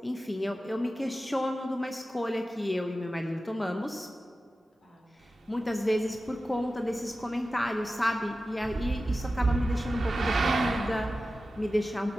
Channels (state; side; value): normal; both; correlation 0.94